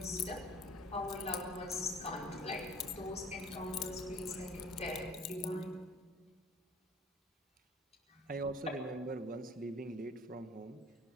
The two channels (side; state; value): both; normal; correlation 0.50